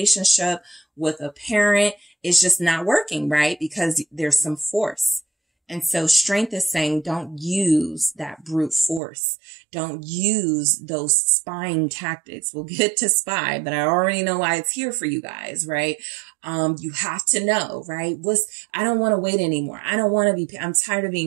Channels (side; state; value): left; drops out; at 9.0 s